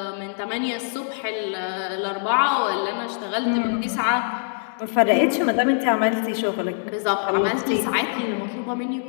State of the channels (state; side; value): silent; right; 63 dB below the other